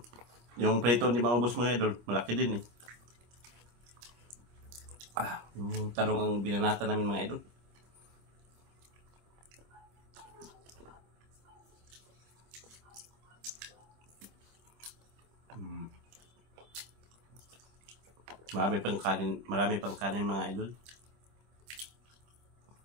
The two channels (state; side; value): late; left; 25 ms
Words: Yung prito hindi maubos mga idol, malaki din eh. Yung talong ang binanata namin mga idol. Marami pang kanin mga idol.